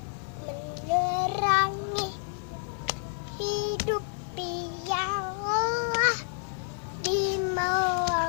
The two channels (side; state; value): right; silent; digital silence